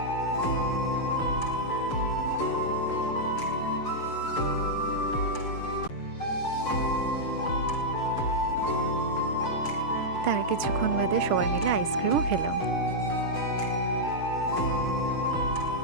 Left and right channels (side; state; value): right; late; 6.3 ms